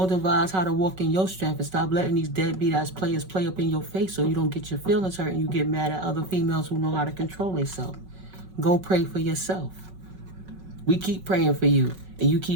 devise how to walk in your strength and stop letting these deadbeat ass players play up in your face so you don't get your feelings hurt and you get mad at other females who know how to control themselves. Go pray for yourself. We keep praying for you and you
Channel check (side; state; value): left; late; 5.3 ms